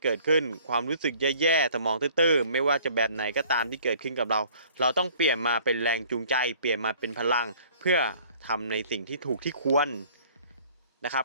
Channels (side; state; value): both; inverted; correlation -0.54